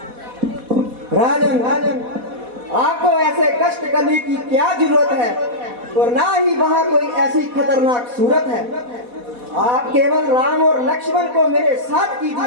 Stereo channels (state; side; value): late; left; 4.1 ms